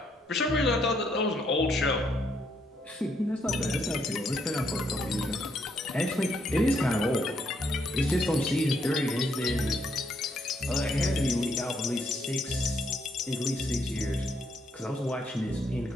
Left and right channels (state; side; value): normal; both; correlation 0.74